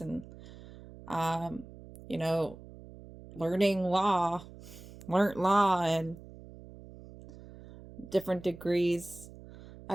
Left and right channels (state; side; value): noise; right; hum, 17 dB below the sound